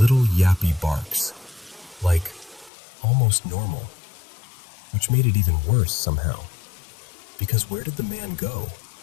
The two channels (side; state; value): right; drops out; at 2.7 s